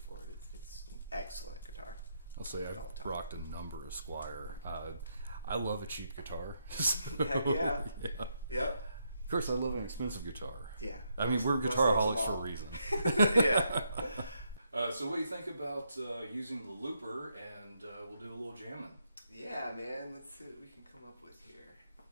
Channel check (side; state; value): both; inverted; correlation -0.78